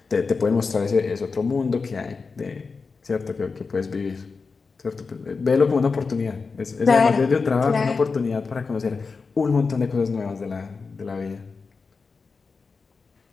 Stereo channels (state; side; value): quieter; right; 4.6 dB